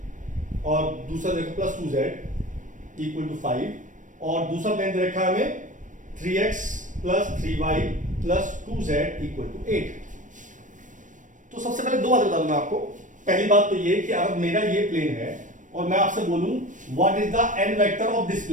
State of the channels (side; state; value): left; late; 0.37 ms